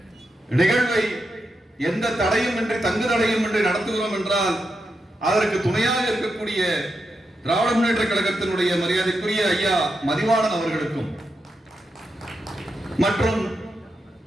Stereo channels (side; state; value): both; normal; correlation 0.86